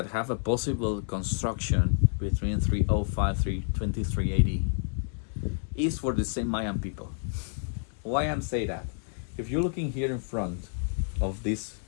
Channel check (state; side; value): silent; right; 58 dB below the other